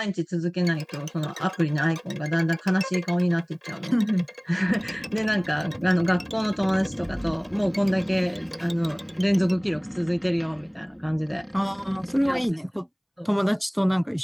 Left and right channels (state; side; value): identical; both; correlation 1.00